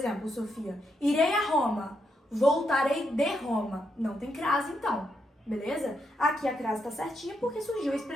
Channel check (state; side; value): normal; both; correlation 0.80